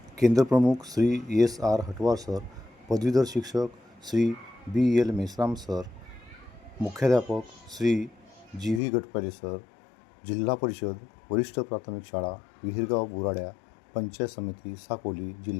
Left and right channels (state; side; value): drops out; right; at 8.8 s